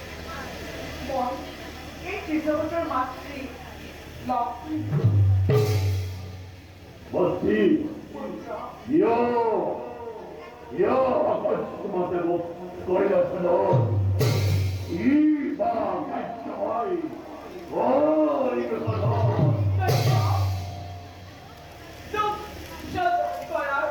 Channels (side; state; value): both; identical; correlation 1.00